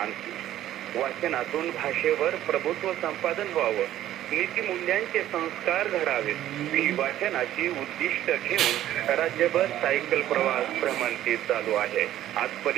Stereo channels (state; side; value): quieter; left; 12.9 dB